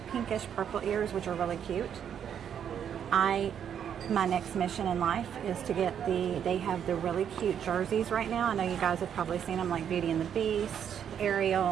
pinkish purple ears, which are really cute. My next mission in life is to get they have the really cute jerseys right now. I know you guys have probably seen them, like Beauty and the Beast,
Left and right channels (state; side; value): quieter; left; 8.6 dB